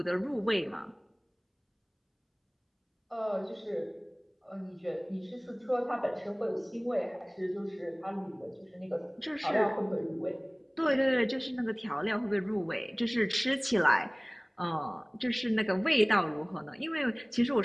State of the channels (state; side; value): identical; both; correlation 1.00